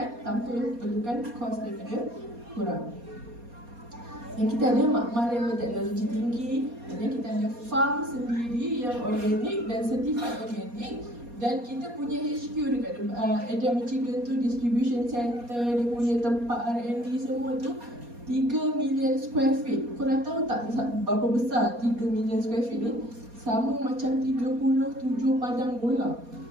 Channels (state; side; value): late; left; 4.2 ms